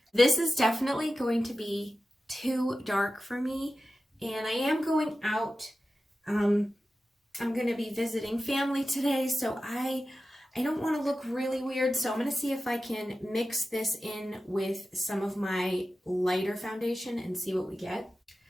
This is definitely going to be too dark for me, and I am going out. I'm going to be visiting family today, so I don't want to look really weird, so I'm going to see if I can mix this in with some of my lighter foundation and see what we get.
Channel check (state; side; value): normal; both; correlation 0.93